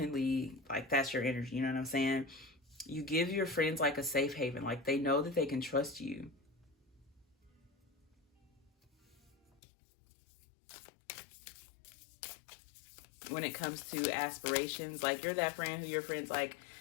like, that's your energy, you know what I'm saying? You give your friends like a safe haven, like they know that they can trust you. When it comes to aspirations, like, you're that friend who your friends like,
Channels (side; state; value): right; drops out; at 9.6 s